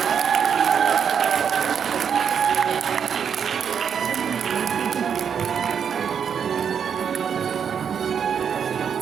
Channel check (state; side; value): quieter; left; 7.4 dB